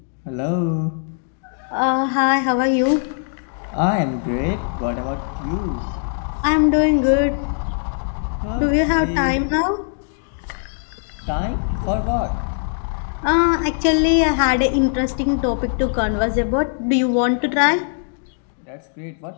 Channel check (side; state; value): right; silent; digital silence